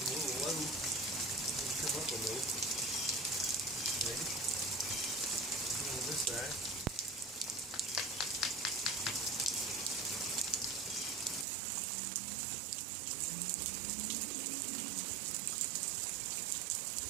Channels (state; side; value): drops out; left; at 11.5 s